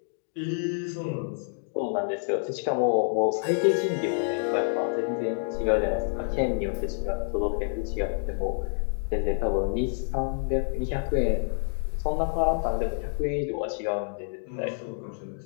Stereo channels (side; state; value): right; silent; digital silence